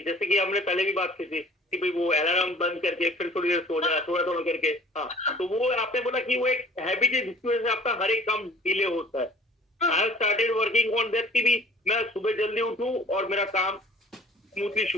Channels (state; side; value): normal; both; correlation 0.49